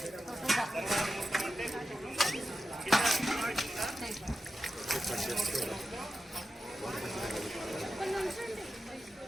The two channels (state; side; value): normal; both; correlation 0.91